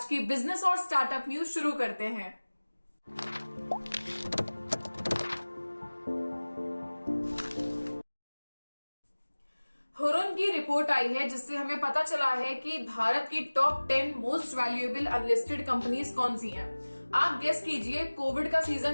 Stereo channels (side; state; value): both; inverted; correlation -1.00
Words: की बिजनेस और स्टार्टअप न्यूज शुरू करते हैं। हुरुन की रिपोर्ट आई है जिससे हमें पता चला है कि भारत की top 10 most valuable unlisted companies कौन सी हैं। आप गेस कीजिए। कोविड का